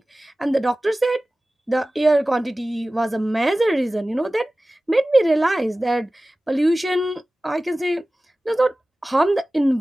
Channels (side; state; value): both; normal; correlation 0.97